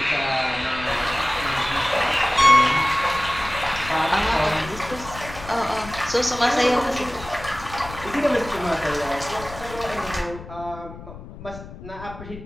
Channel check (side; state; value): left; noise; rumble, 14 dB below the sound